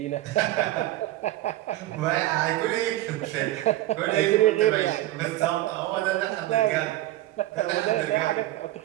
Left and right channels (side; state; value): left; quieter; 15.7 dB